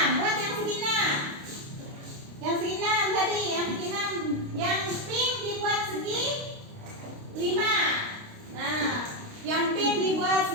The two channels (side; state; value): left; late; 29 ms